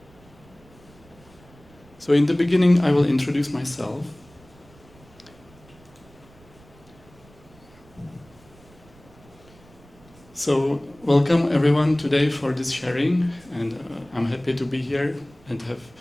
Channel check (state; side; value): noise; right; rumble, 26 dB below the sound